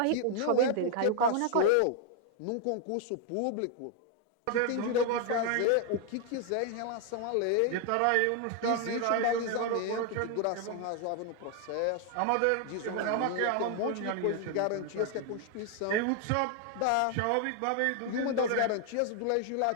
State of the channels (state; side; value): different; both; correlation 0.00